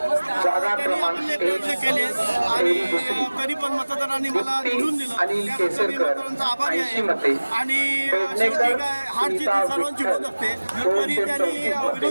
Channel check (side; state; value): both; inverted; correlation -1.00